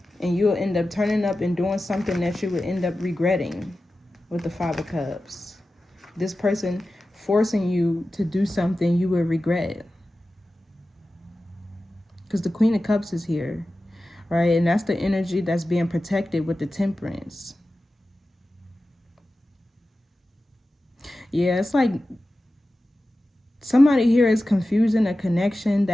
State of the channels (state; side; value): normal; both; correlation 0.94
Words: And you'll end up turning up and doing something that you would end up regretting with the Five of Cups. This person forcing you to do something you would regret. Because the Queen of Cups is here, right? And that's the energy that's being protected with the Temperance. Yeah, it's like somebody here is confusing a connection